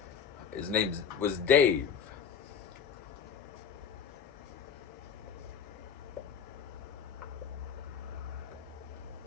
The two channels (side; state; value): right; quieter; 7.2 dB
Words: His name was Dave.